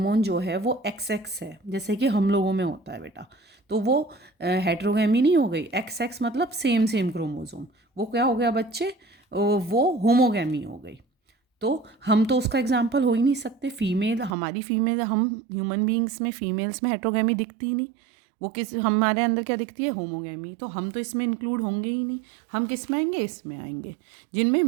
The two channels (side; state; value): left; drops out; at 14.3 s